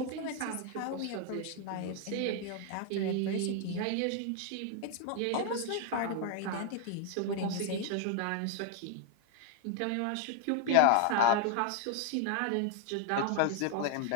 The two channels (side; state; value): both; different; correlation 0.00